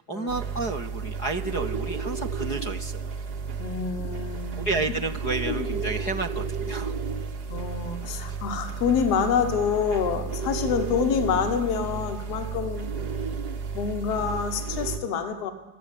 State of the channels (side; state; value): right; late; 4.8 ms